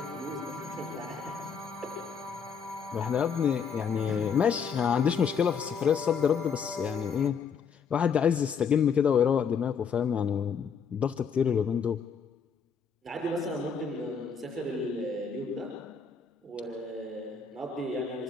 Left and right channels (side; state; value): right; quieter; 6.4 dB